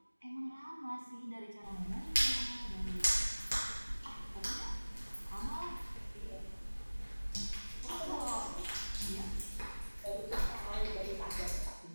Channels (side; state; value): both; inverted; correlation -1.00